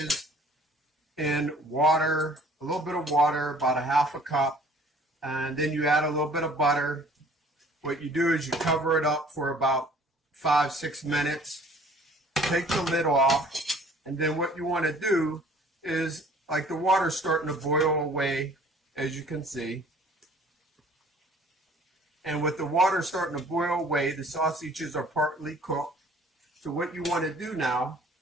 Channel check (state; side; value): normal; both; correlation 0.54